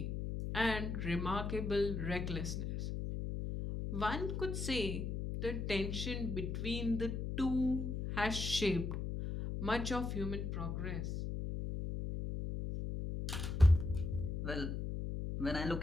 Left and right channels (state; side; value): noise; left; hum, 3 dB below the sound